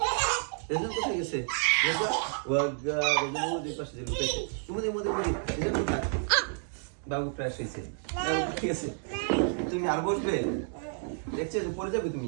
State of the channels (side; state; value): left; silent; 58 dB below the other